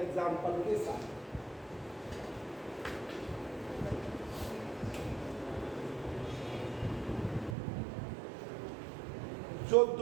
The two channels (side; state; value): left; drops out; at 7.6 s